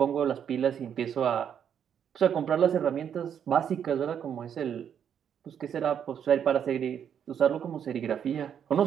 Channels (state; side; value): quieter; left; 8.5 dB